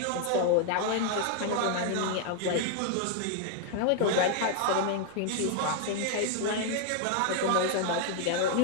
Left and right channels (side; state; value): both; different; correlation 0.00